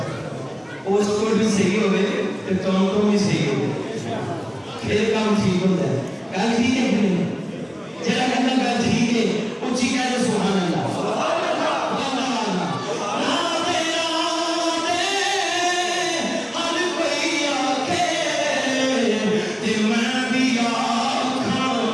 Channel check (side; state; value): both; identical; correlation 1.00